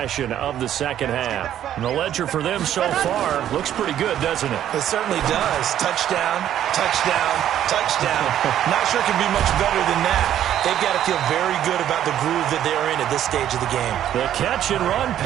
of the second half. And the ledger for them so far looks pretty good, doesn't it? It certainly does. Touchdown, touchdown, touchdown. Not sure it can be much better than that. They've got to feel very good about the groove that they're in at this stage of the game. The catch and run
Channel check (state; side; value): quieter; left; 11.0 dB